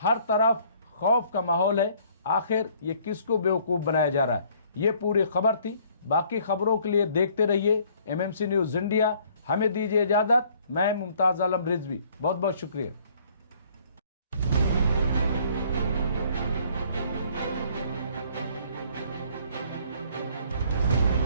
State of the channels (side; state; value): both; inverted; correlation -0.60